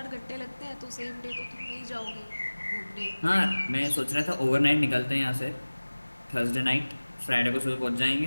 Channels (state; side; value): inverted; both; correlation -1.00